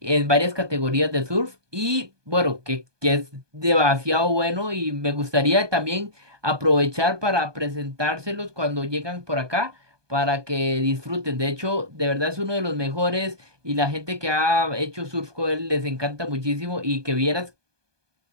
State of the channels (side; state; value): left; late; 1.2 ms